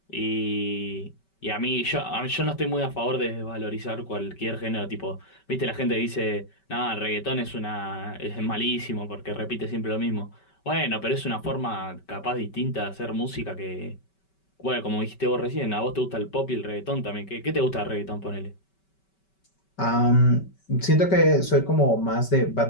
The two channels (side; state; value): right; late; 5.2 ms